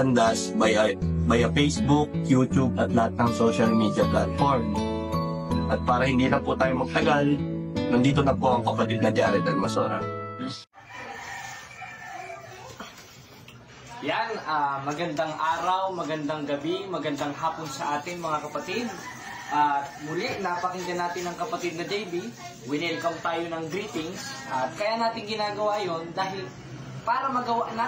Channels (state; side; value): identical; both; correlation 1.00